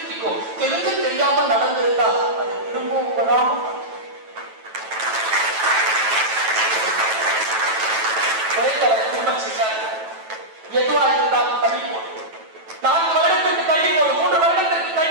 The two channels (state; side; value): late; left; 9.1 ms